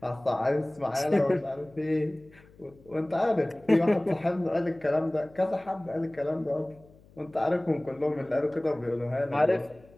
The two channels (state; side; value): noise; left; hum, 26 dB below the sound